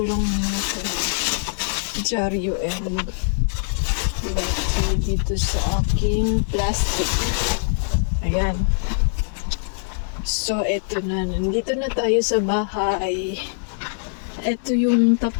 lang muna sa dyaryo and letter dito sa aking plastic. Ayan. So, eto na. Nandito na tayo sa bahay. Eto yung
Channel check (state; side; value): silent; right; digital silence